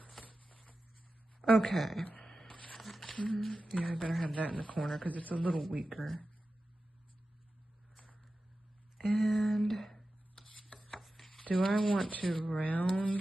Okay. Yeah, I better have that in the corner because it's a little weaker. And do I want to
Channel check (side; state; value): both; normal; correlation 0.93